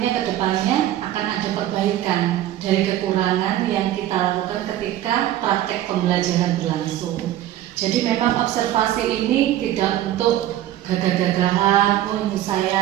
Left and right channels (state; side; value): quieter; left; 13.1 dB